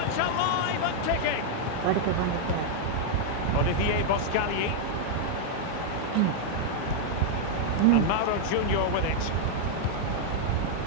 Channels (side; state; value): both; different; correlation -0.01